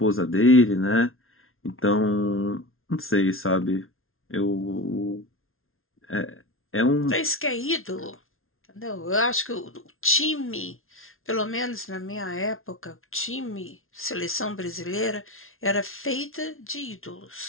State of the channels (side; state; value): right; late; 0.61 ms